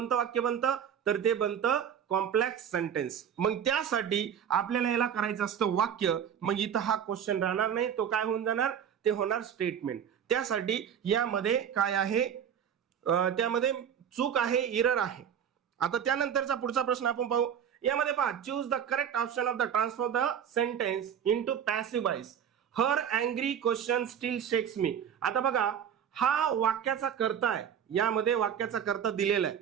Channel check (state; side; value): quieter; left; 8.5 dB